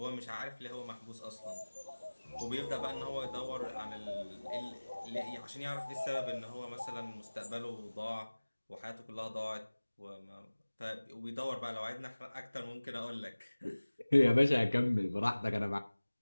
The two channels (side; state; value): both; inverted; correlation -1.00